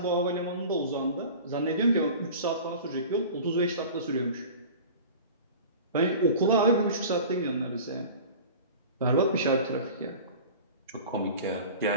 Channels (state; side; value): inverted; both; correlation -0.38